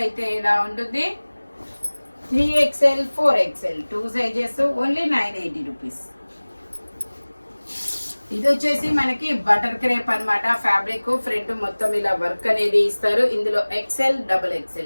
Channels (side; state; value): both; inverted; correlation -1.00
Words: అయితే ఇలా ఉంటుంది. 3XL 4XL 2 sizes, only 980 rupees. ఇది వచ్చేసి మనకి బటర్ క్రేప్ అన్నమాట. ఫ్యాబ్రిక్ ఫ్రంట్ మొత్తం ఇలా వర్క్ అనేది ఇస్తారు. ఇందులో XL, double